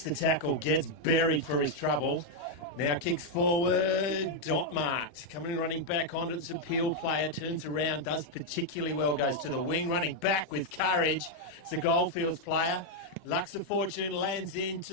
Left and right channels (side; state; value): right; late; 39 ms